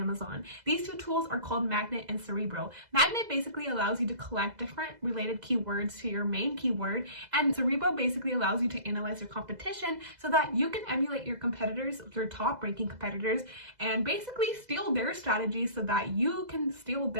These two tools are called Magnet and Cerebro. Magnet basically allows you to collect different related keywords to your main keyword, and Cerebro basically allows you to analyze your competition so that you can emulate your competitors, your top ranking competitors, and basically steal their strategies so that you can steal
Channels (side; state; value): left; late; 2.0 ms